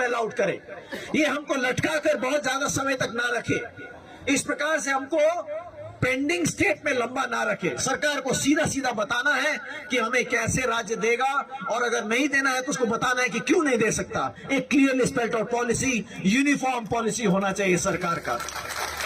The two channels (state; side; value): identical; both; correlation 1.00